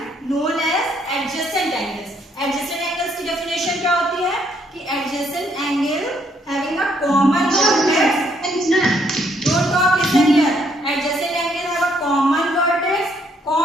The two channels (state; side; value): normal; both; correlation 0.70